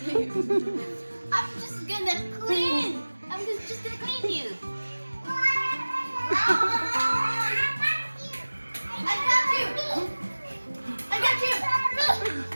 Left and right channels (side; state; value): both; inverted; correlation -1.00